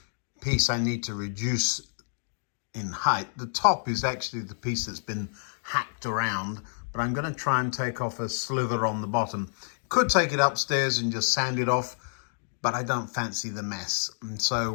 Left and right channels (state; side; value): silent; right; digital silence